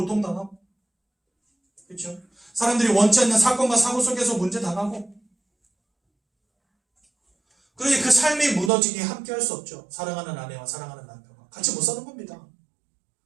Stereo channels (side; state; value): left; drops out; at 8.7 s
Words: 그렇죠? 사람들이 원치 않는 사건과 사고 속에서 문제 당하고 그러니 그 삶이 무너지니 함께 할 수 없죠. 사랑하는 아내와 사랑하는 남편과 같이 못 사는 겁니다.